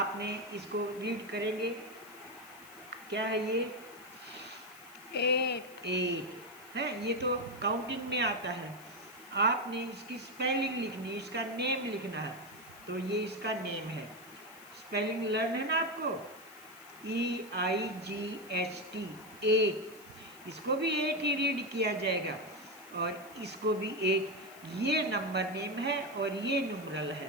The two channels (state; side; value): noise; left; hiss, 21 dB below the sound